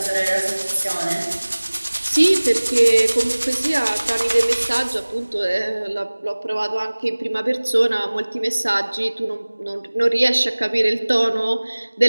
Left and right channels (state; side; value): inverted; both; correlation -1.00